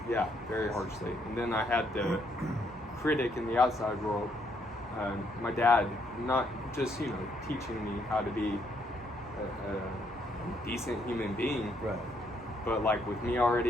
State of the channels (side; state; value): both; normal; correlation 0.72